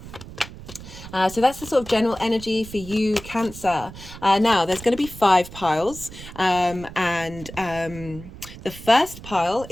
So that's the sort of general energy for you, Cancer. Now, there's going to be 5 piles. The first pile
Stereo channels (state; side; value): noise; right; rumble, 15 dB below the sound